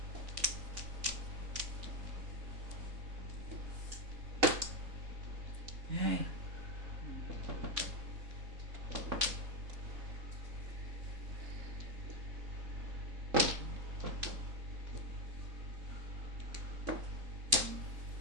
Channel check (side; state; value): left; late; 3.5 ms